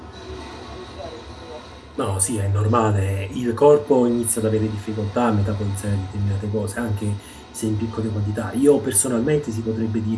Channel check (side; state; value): both; identical; correlation 1.00